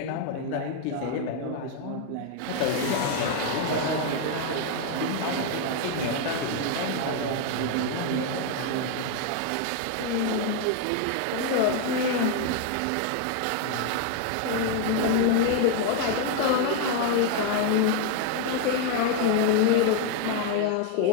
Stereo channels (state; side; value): different; both; correlation 0.00